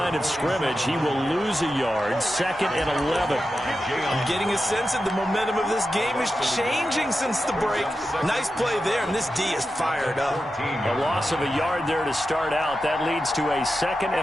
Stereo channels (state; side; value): normal; both; correlation 0.91